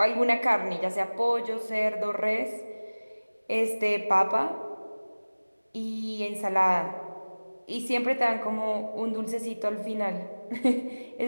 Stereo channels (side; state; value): both; inverted; correlation -1.00